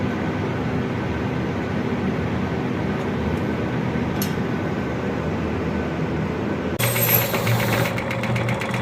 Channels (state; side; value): identical; both; correlation 1.00